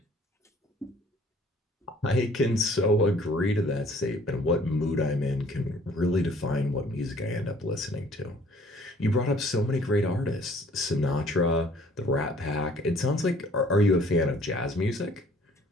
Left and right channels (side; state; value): both; normal; correlation 0.56